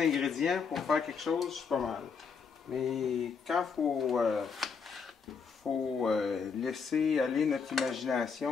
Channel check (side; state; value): right; quieter; 5.7 dB